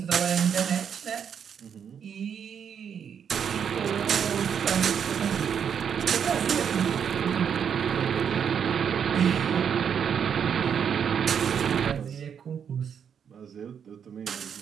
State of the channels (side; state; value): left; quieter; 7.7 dB